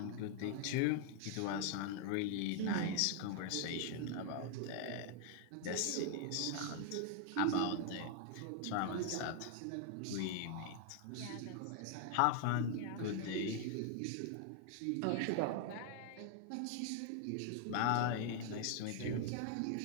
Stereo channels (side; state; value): both; different; correlation 0.00